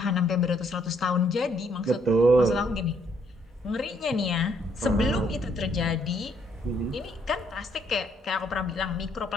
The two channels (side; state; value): both; normal; correlation 0.69